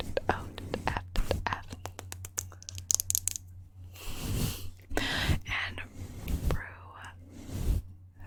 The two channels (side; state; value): both; identical; correlation 1.00